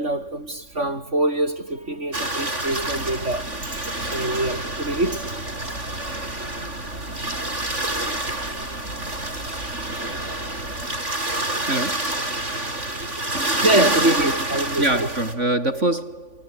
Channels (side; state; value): left; late; 3.5 ms